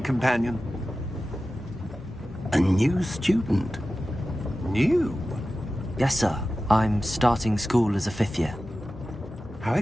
companion? A new student. New? Yes, sir. I'm starting school as a 5th year. How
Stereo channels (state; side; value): normal; both; correlation 0.94